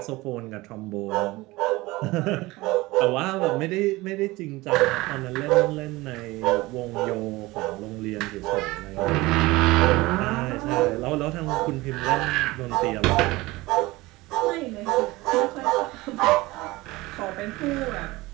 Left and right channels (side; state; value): left; quieter; 20.6 dB